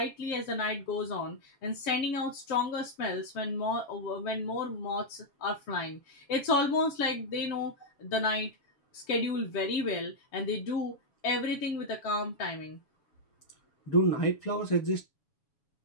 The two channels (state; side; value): late; right; 7.1 ms